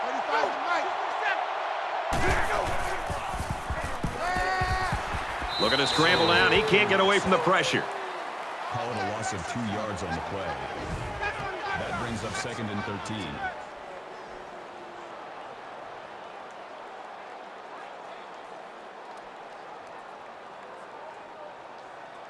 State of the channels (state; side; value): identical; both; correlation 1.00